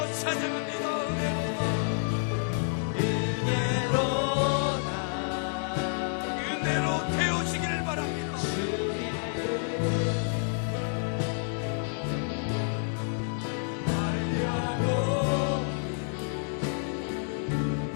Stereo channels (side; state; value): right; silent; 56 dB below the other